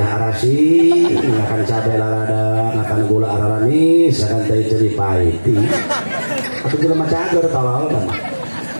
arasi, ngakan cabai lalada, ngakan gula araranis, ngakan teh ceri pahiti. Atau juga macam agar tawal kan?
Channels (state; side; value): inverted; both; correlation -1.00